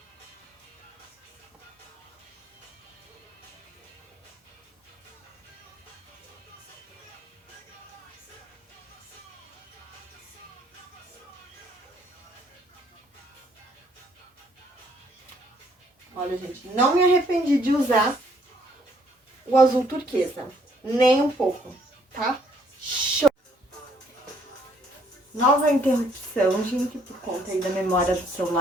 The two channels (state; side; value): normal; both; correlation 0.66